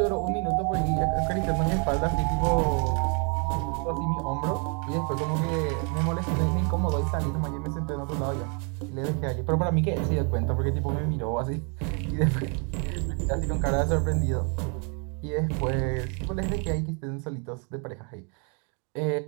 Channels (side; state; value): left; quieter; 37.4 dB